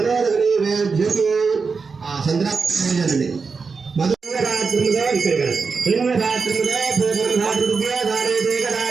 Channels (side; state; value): left; quieter; 4.9 dB